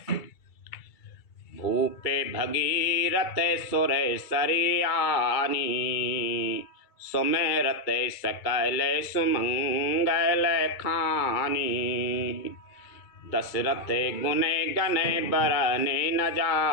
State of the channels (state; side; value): late; right; 2.3 ms